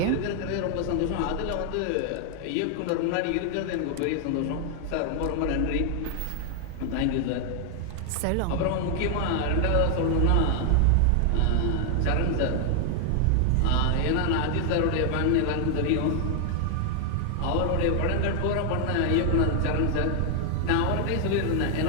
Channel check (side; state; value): both; different; correlation 0.00